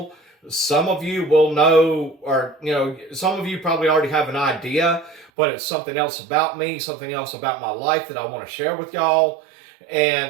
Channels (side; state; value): left; drops out; at 5.3 s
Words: some of you will know, or, some of you probably already have an idea, but it's something else about me, something else about my life that I want to share with y'all.